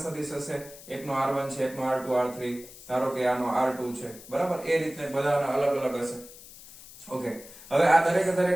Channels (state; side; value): noise; left; hiss, 18 dB below the sound